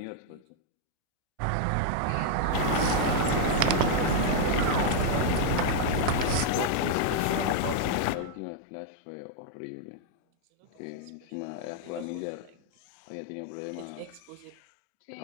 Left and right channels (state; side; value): different; both; correlation 0.00